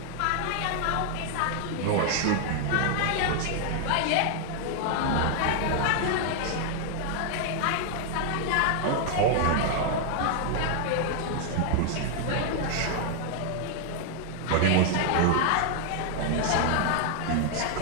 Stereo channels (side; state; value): both; different; correlation 0.00